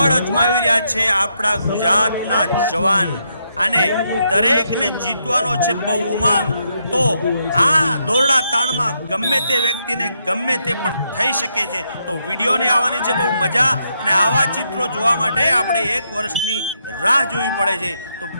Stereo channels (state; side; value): inverted; both; correlation -0.79